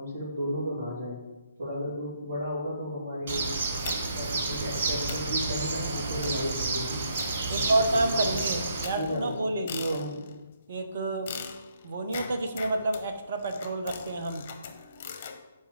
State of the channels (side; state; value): both; inverted; correlation -0.73